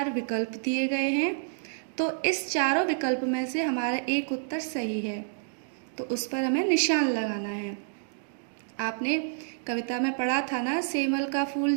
विकल्प दिए गए हैं, तो इस चारों विकल्प में से हमारा एक उत्तर सही है, तो उस पर हमें निशान लगाना है। आपने कविता में पढ़ा था ना, सेमल का फूल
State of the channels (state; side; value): silent; left; digital silence